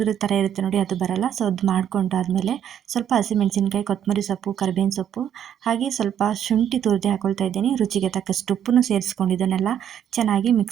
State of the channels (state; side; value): quieter; left; 9.5 dB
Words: ಥರ ಇರುತ್ತೆ ನೋಡಿ, ಅದು ಬರಲ್ಲ. ಸೊ ಅದು ಮಾಡ್ಕೊಂಡಾದ್ಮೇಲೆ ಸ್ವಲ್ಪ ಹಸಿಮೆಣಸಿನ್ಕಾಯಿ, ಕೊತ್ತಂಬರಿ ಸೊಪ್ಪು, ಕರಿಬೇವಿನ ಸೊಪ್ಪು, ಹಾಗೆ ಸ್ವಲ್ಪ ಶುಂಠಿ ತುರಿದು ಹಾಕೊಳ್ತಾ ಇದ್ದೀನಿ. ರುಚಿಗೆ ತಕ್ಕಷ್ಟು ಉಪ್ಪನ್ನು ಸೇರಿಸ್ಕೊಂಡು ಇದನ್ನೆಲ್ಲ ಚೆನ್ನಾಗಿ